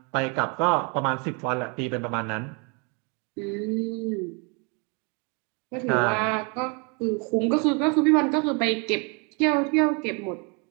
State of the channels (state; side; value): quieter; left; 34.0 dB